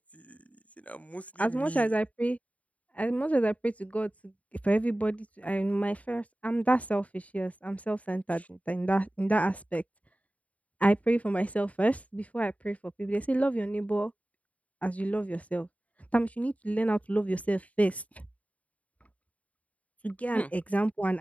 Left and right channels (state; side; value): late; right; 0.068 ms